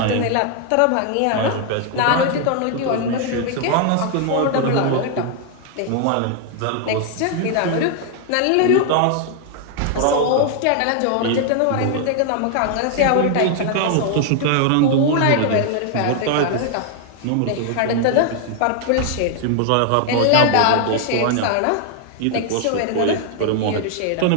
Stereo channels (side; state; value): both; different; correlation 0.00